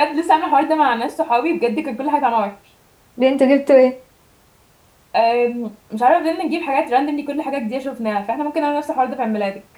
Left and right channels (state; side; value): identical; both; correlation 1.00